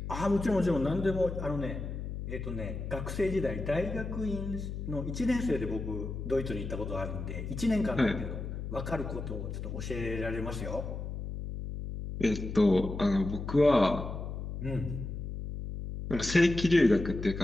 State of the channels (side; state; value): left; noise; hum, 6 dB below the sound